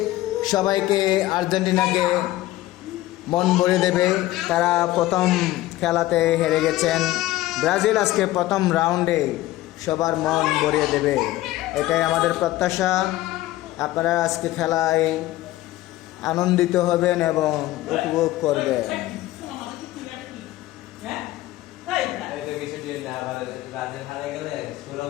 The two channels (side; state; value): right; quieter; 16.3 dB